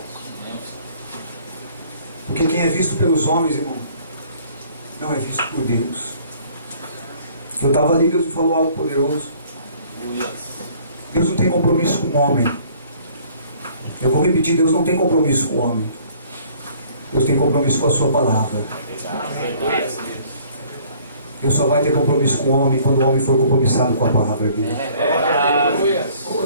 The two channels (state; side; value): inverted; both; correlation -0.56